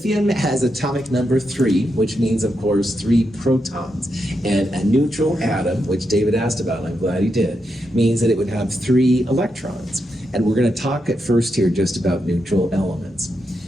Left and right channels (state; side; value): normal; both; correlation 0.84